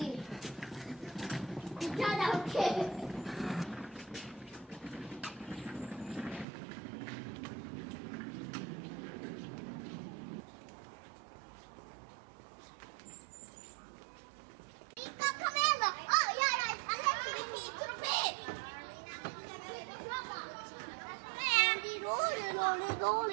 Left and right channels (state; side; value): drops out; left; at 6.5 s